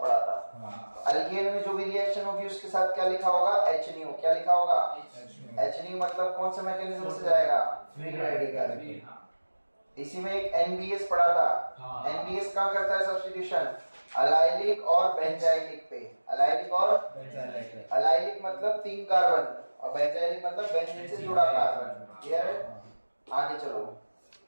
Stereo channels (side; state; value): both; inverted; correlation -1.00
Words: पढ़ा था। हाँ. अल्केन में जो भी रिएक्शन होगी उसके साथ क्या लिखा होगा? HNO। क्या लिखा होगा? HNO मतलब कौन सा मैकेनिज्म से जाएगा? Free radical. इसी में एक NBS पढ़ा था। NBS कहाँ करता है सब्स्टिट्यूशन? अलाइलिक और बेंजाइलिक पे। अलाइलिक और Benzylic. अलाइलिक मतलब 3 कार्बन और बेंजाइलिक मतलब बेंजीन से जुड़ा कार्बन। क्लियर है? आगे चलो।